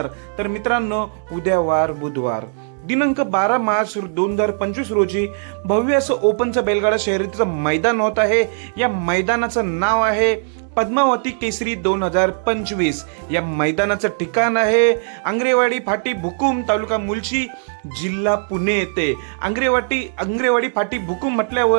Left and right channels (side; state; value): left; silent; digital silence